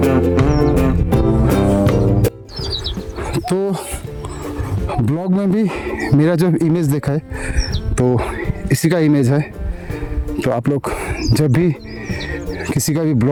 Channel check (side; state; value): both; identical; correlation 1.00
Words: तो ब्लॉग में भी मेरा जो इमेज देखा है तो इसी का इमेज है। तो आप लोग जब भी किसी का भी